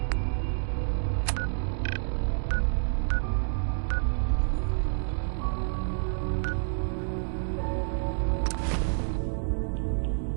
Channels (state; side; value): silent; left; digital silence